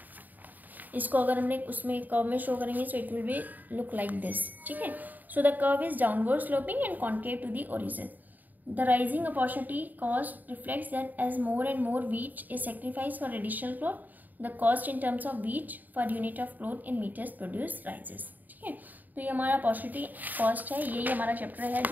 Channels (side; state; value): left; late; 0.085 ms